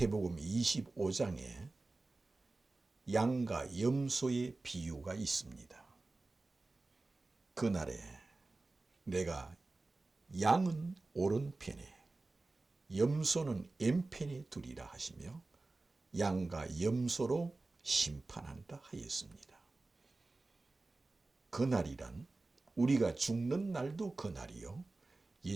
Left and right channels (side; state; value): left; quieter; 3.3 dB